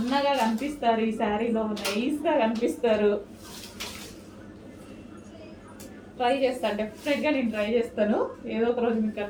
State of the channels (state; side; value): identical; both; correlation 1.00